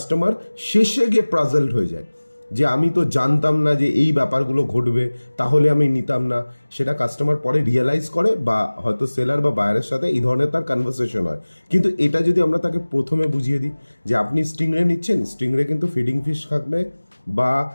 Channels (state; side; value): inverted; both; correlation -1.00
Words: শেষে গিয়ে পাজলড হয়ে যায় যে আমি তো জানতাম না যে এই ব্যাপারগুলো ঘটবে, তাহলে আমি নিতাম না। সেটা কাস্টমার পরে রিয়েলাইজ করে, বা হয়তো সেলার বা বায়ারের সাথে এই ধরনের তার কনভারসেশন হয়। কিন্তু এটা যদি আমরা তাকে প্রথমে বুঝিয়ে দিই যে আপনি স্টিংরে নিচ্ছেন, স্টিংরে কিন্তু ফিডিং ফিশ থাকবে, বা